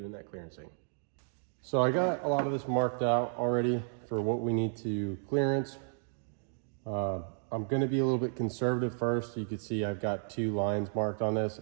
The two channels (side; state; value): left; silent; 56 dB below the other